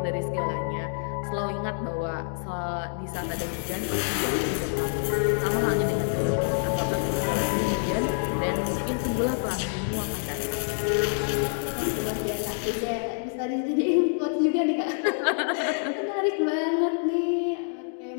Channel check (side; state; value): right; silent; digital silence